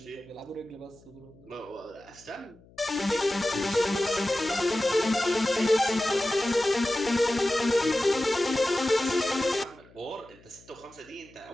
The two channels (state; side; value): noise; left; hum, 26 dB below the sound